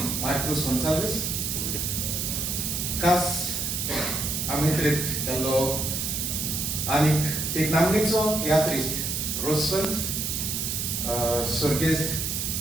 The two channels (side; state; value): right; noise; hiss, 1 dB below the sound